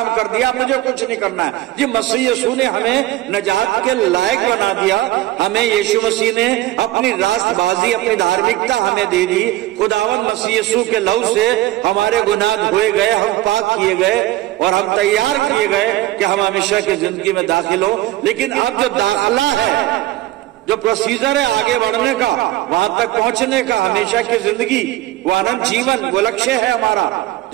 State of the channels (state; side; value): quieter; left; 16.0 dB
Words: कर दिया, मुझे कुछ नहीं करना है। जी, मसीह यीशु ने हमें नजात के लायक बना दिया। हमें यीशु मसीह ने अपनी रास्तबाजी, अपनी धार्मिकता हमें दे दी। खुदावंद मसीह यीशु के लहू से हमारे गुनाह धोए गए, हम पाक किए गए और हम तैयार किए गए कि हम हमेशा की जिंदगी में दाखिल हो। लेकिन अब जो दाखिला है, जो प्रोसीजर है आगे बढ़ने का, वहां तक पहुंचने का, हमेशा की जिंदगी, वो अनंत जीवन, वो लक्ष्य है हमारा,